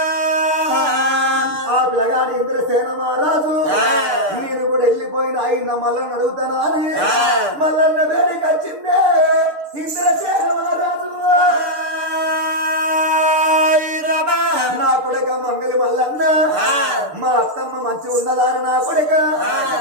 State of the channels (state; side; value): late; left; 6.7 ms